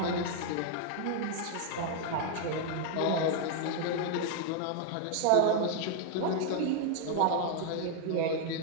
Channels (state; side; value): different; both; correlation 0.00